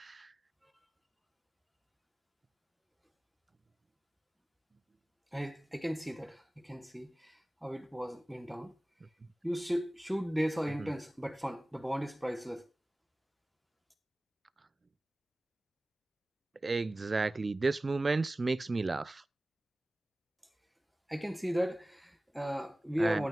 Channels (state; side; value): normal; both; correlation 0.98